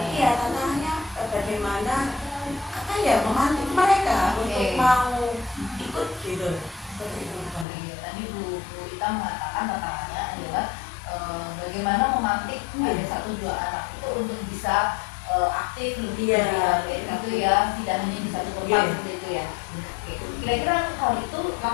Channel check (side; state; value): right; drops out; at 7.7 s